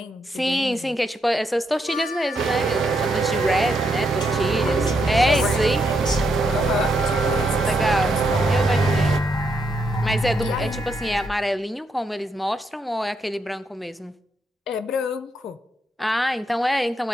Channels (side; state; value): both; normal; correlation 0.79